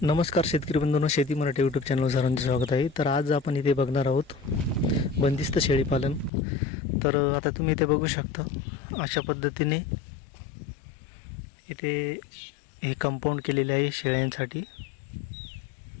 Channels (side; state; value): right; drops out; at 6.3 s